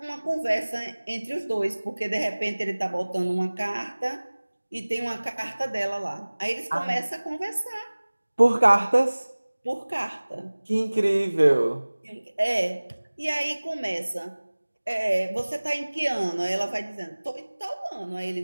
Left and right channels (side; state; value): both; inverted; correlation -1.00